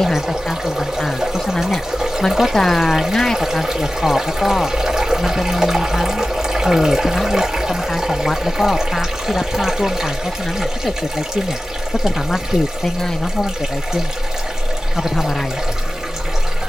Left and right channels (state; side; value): normal; both; correlation 0.95